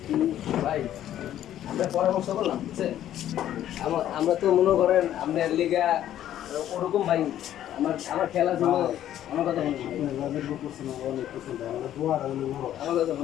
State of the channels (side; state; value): right; quieter; 11.7 dB